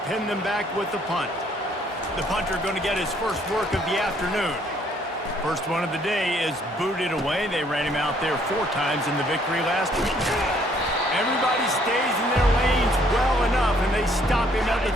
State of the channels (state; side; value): normal; both; correlation 0.64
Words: pin them back with the punt. The punter going to get his first work of the afternoon. First one of the day is booted away. They ran him out there 4 times in the victory last week. Everybody stays in their lanes well enough, and they stop him at the